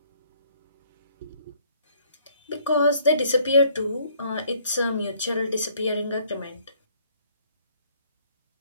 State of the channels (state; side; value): inverted; both; correlation -0.63